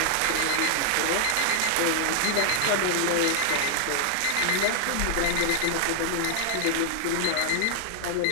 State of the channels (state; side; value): different; both; correlation -0.01